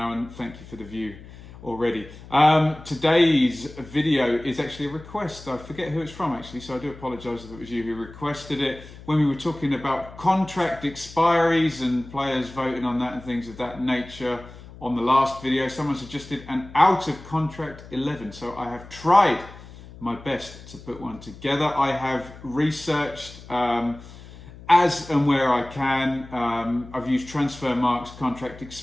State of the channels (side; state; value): left; noise; hum, 17 dB below the sound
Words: and thank you for the view already. Today's video is actually a request. I forget who it's from actually, so I do apologise if it was you who requested it. When we were talking about contract expiries and players voting on that and things of that nature on the last video, someone suggested an out of contract 11. So I have tried my best to put one together. I have researched as and where I can. I've used Transfermarkt's contract